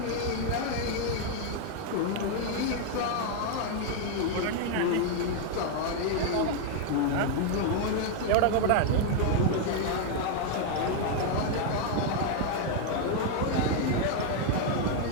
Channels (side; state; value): both; different; correlation 0.00